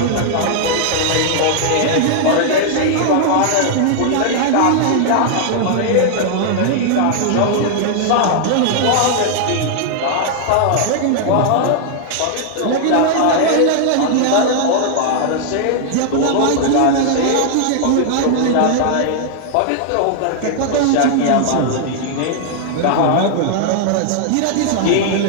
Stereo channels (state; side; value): different; both; correlation -0.01